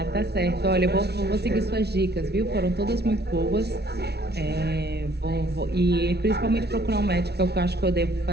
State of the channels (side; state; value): left; late; 0.48 ms